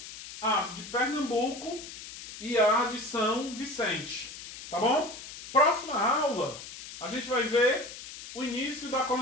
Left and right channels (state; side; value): noise; left; hiss, 13 dB below the sound